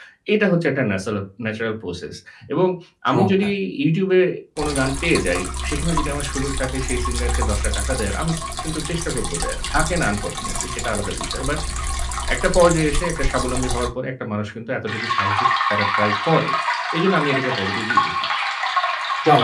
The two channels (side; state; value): both; identical; correlation 1.00